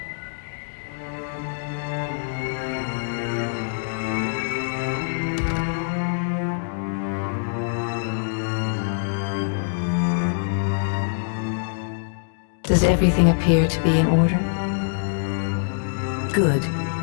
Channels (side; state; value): right; silent; digital silence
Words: Does everything appear to be in order? Good.